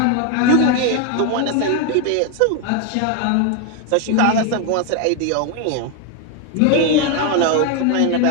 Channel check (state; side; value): different; both; correlation 0.01